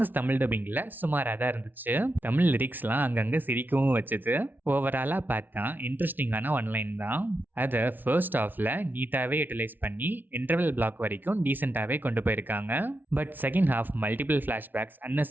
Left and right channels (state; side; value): late; left; 0.088 ms